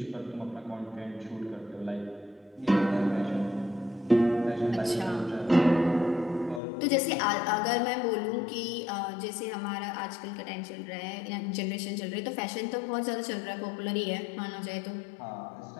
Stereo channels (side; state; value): right; drops out; at 6.6 s